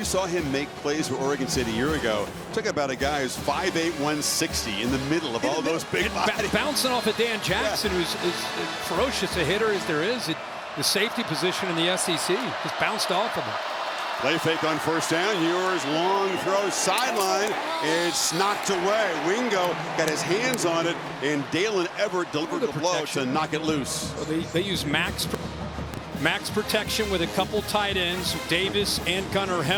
saw him make plays for Oregon State a year ago. Talk about a guy who's 5'8", 160 in the middle of all those big bodies. Bouncing off of Dan Jackson, who's as ferocious a hitter as there is. The safety position in the SEC just bounced off of him. Play fake on first down. Ewers, long throw, sideline. It's knocked away. Wingo got his hands on it, and Dalen Everett delivered the blow to knock it loose. Well, they use max protection with a couple tight ends, Davis and Gunnar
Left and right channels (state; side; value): identical; both; correlation 1.00